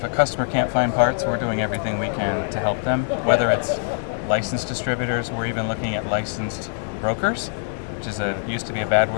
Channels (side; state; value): right; silent; digital silence